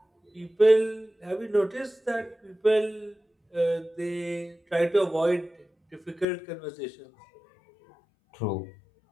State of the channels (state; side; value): drops out; right; at 6.2 s